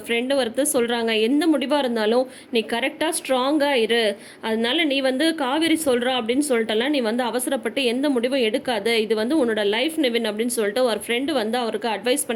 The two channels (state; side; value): identical; both; correlation 1.00